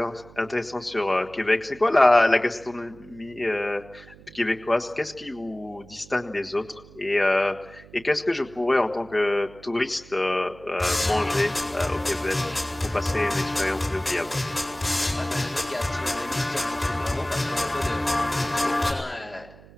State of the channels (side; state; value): right; noise; hum, 22 dB below the sound